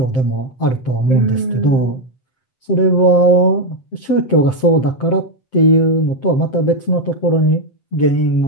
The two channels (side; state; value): right; late; 7.6 ms